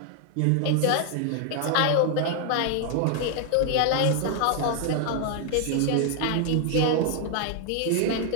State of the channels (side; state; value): both; different; correlation 0.00